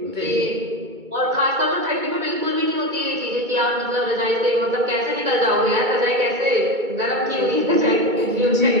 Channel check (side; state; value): left; late; 2.2 ms